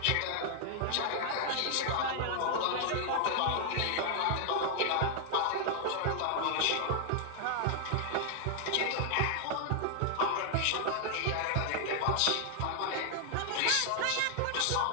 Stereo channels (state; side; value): different; both; correlation 0.00